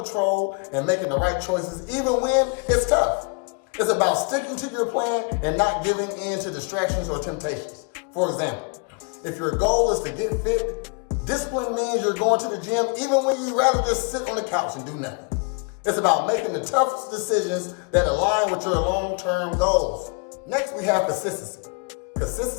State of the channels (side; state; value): right; quieter; 35.4 dB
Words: and making the right choices even when it's tough. It's about sticking to your plan and not giving in to distractions or temptations. For example, if your goal is to get fit, discipline means you're going to the gym even when you'd rather just sit on the couch and do nothing. It's about making the toughest decisions that align with your long-term goals. Next, we have consistency.